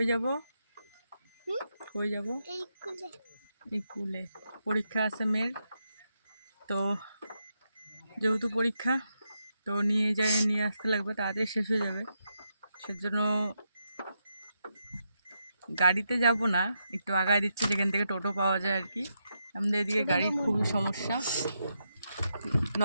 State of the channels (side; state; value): both; inverted; correlation -0.83